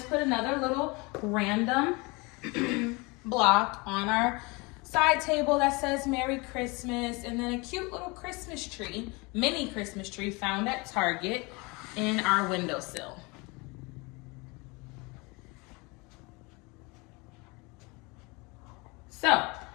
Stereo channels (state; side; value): quieter; right; 26.9 dB